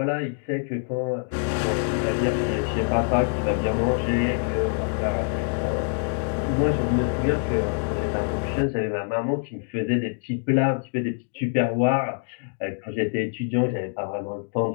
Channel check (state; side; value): silent; right; 59 dB below the other